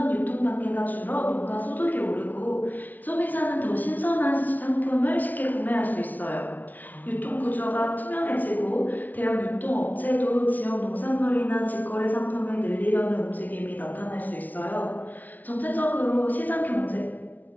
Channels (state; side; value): late; right; 0.079 ms